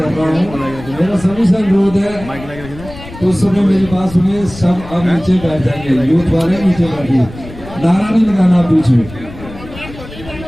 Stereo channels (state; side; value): noise; left; rumble, 15 dB below the sound